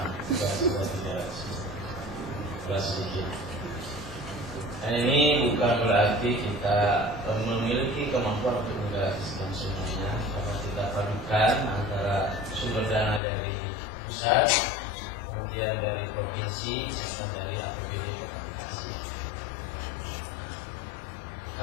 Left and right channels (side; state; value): right; drops out; at 13.2 s